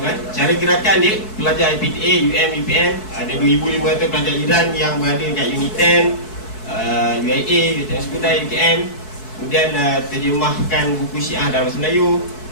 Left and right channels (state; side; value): late; right; 4.6 ms